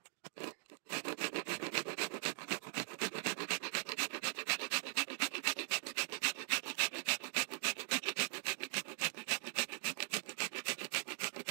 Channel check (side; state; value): left; silent; digital silence